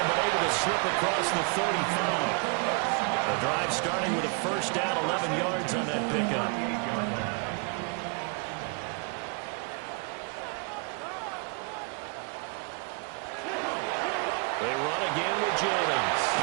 but able to slip across the 35. The drive starting with a 1st down, 11 yards on that pickup. They run again with Jennings.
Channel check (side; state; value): left; quieter; 34.0 dB